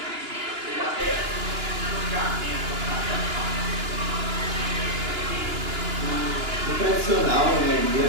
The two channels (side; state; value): left; late; 2.9 ms